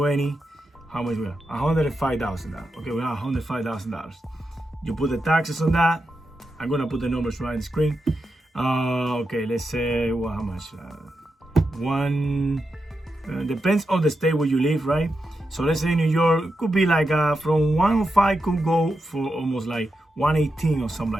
How much we have? $105,000. Okay, we have $105,000. You put the taxes on that, I'm gonna put the numbers right on the screen. Okay, let's say, well, how much? Depends on the state where you live, right? So let's say New York, it could be like from 105 could go for almost like 118 or something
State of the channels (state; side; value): normal; both; correlation 0.88